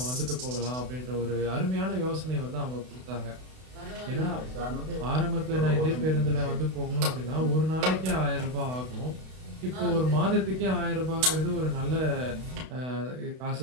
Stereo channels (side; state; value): left; late; 32 ms